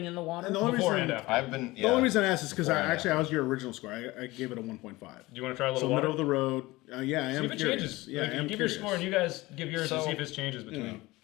in the water? And the only Before reason and after. I've been. the only reason I asked is because Before and I was your original score. I gave it a 1.5. Do you want to try a little So water? middle of the road. Yeah, I am See if it curious. changes. Yeah, Like, I am give curious. your score and you guys give yours and So- see if it changes between.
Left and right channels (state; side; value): quieter; right; 20.3 dB